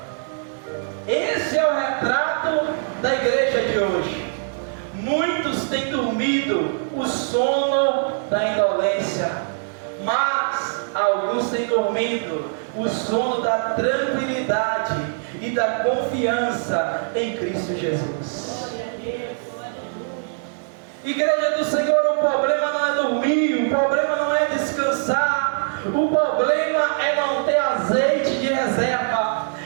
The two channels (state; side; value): silent; left; 64 dB below the other